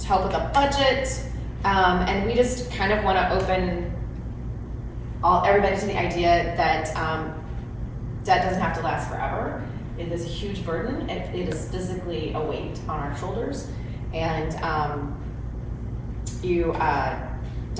help with a budget. And we just kind of want to open everybody to the idea that debt doesn't have to last forever. It is a huge burden. It is physically a weight on our shoulders, and you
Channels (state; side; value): identical; both; correlation 1.00